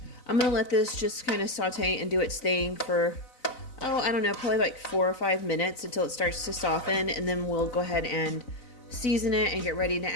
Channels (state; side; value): late; right; 4.0 ms